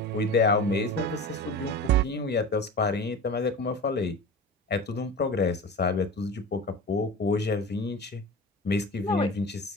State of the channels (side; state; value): both; normal; correlation 0.32